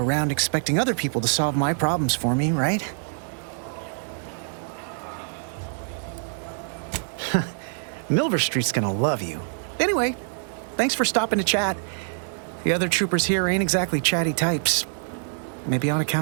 expecting other people to solve my problems for me, right? Milver Street's gonna love you. Anyway, thanks for stopping to chat. The other troopers here ain't exactly chatty types. Maybe on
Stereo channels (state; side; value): silent; left; digital silence